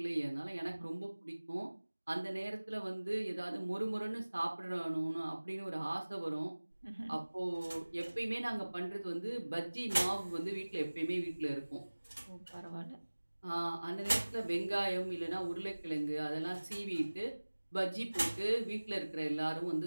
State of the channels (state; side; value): inverted; both; correlation -1.00